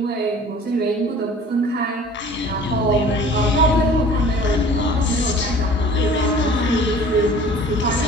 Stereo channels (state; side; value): normal; both; correlation 0.47